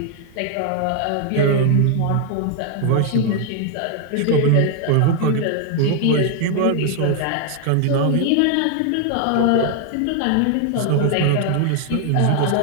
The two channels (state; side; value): different; both; correlation 0.00